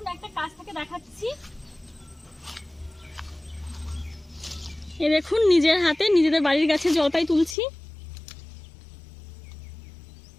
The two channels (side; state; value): right; drops out; at 7.6 s